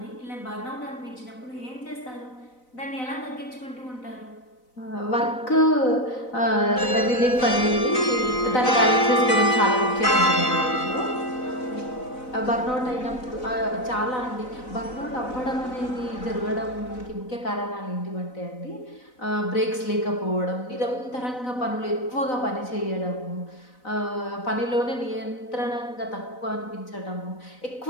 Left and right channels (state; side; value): late; right; 4.0 ms